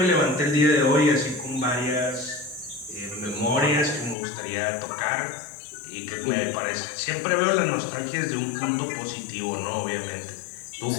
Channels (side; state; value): right; drops out; at 4.2 s